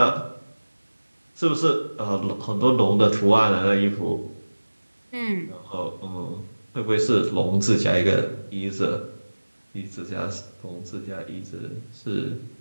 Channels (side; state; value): both; inverted; correlation -1.00